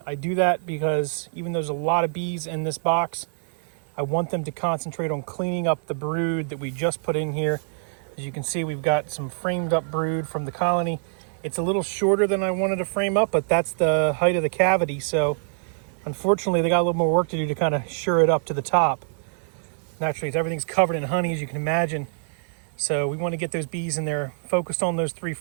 I do that because even though there's a lot of bees in this box, I want them to concentrate on cleaning up the brood that we just put in here. As you can see, we've got some framed up brood from the colony. It's a little shorter than I wanted to frame up, but that's the height of the cavity. So unfortunately, they got a little more work to do to kind of sure it up to the top. Naturally, everything's covered in honey, as you can imagine. So we want to get those bees in there, focused on those 3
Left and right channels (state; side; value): silent; left; digital silence